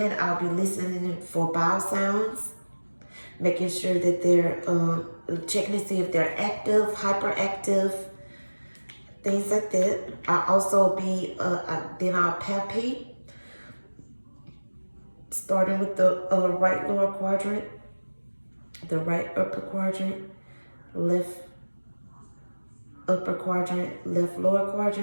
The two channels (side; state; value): both; inverted; correlation -1.00